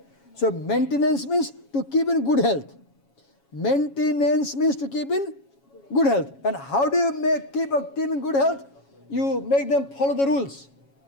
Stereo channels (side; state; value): right; late; 7.2 ms